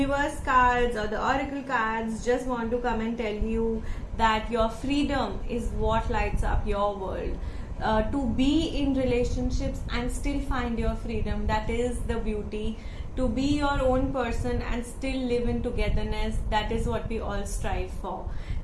cards or the oracle cards just want to come and tell you that your freedom is what lights up your world. To be in relationships and still find your freedom, that is the beauty. To be your own person and still live in togetherness, that is what we all strive for.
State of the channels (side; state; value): both; identical; correlation 1.00